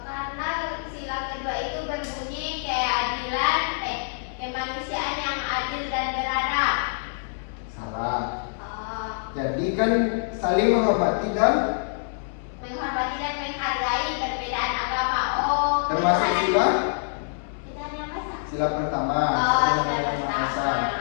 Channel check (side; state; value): right; silent; digital silence